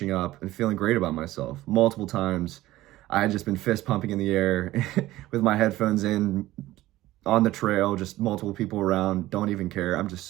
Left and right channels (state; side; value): quieter; left; 16.3 dB